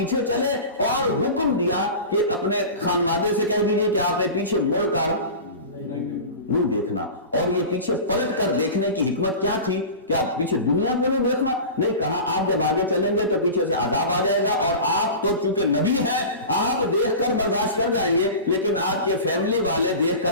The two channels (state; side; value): inverted; both; correlation -0.32